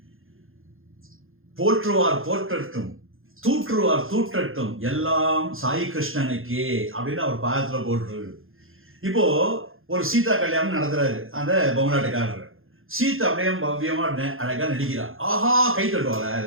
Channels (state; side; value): late; left; 0.60 ms